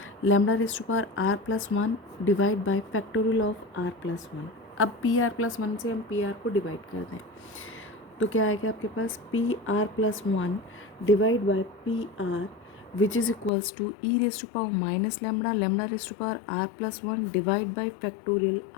lambda raise to power R+1 divide by factorial of R+1। अब PR+1 से हम PR को डिवाइड कर दें तो क्या आएगा आपके पास, PR+1 divide by PR which is equals to e raised to power minus lambda, lambda raised to power R+1 divide by factorial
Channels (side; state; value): right; drops out; at 13.5 s